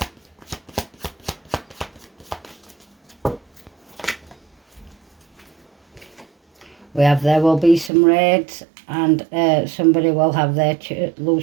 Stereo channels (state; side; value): drops out; left; at 7.9 s